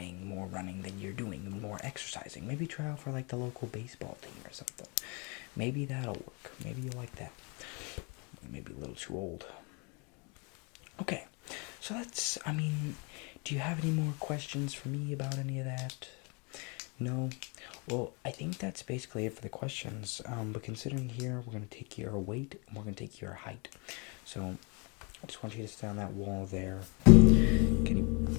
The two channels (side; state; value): right; quieter; 30.2 dB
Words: running than you're doing, more exercising. Maybe try out for the local baseball team or something. Maybe that'll work. Maybe you'll like that. Maybe a little too old. Okay, so that's, do you have any more questions for me about any of that? No? Well, I think that's basically it for the questions. But considering here, we're going to take your weight and we're going to take your height. So, I just want you to stand on that wall there. Can